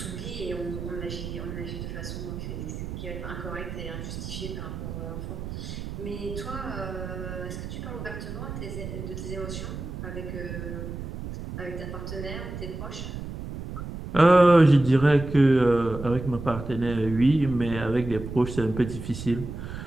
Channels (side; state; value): right; noise; rumble, 8 dB below the sound